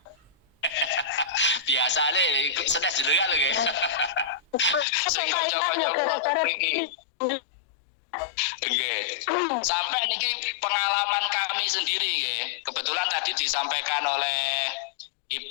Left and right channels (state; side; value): drops out; right; at 4.9 s